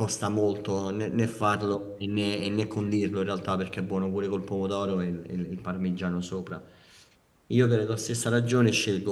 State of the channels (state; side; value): identical; both; correlation 1.00